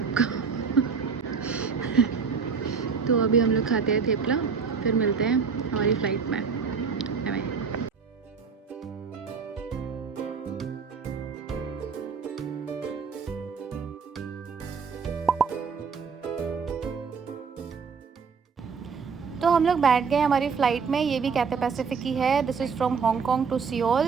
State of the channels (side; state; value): left; quieter; 5.8 dB